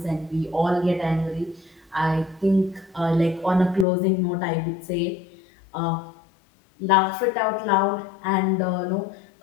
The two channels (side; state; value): right; drops out; at 3.9 s